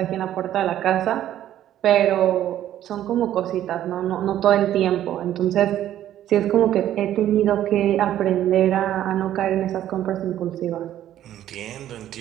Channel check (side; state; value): left; quieter; 12.0 dB